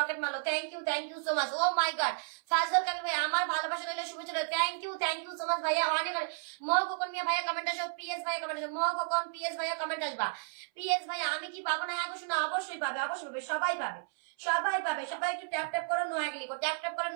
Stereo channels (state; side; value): silent; left; 56 dB below the other